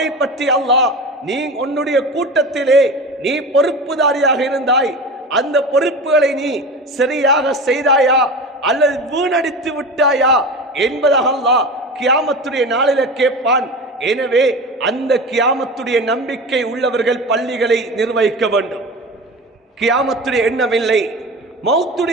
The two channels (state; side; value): normal; both; correlation 0.30